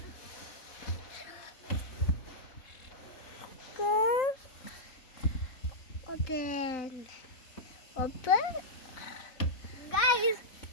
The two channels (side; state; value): right; late; 4.2 ms